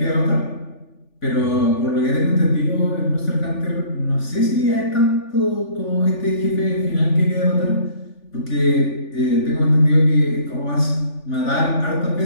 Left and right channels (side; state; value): right; late; 3.4 ms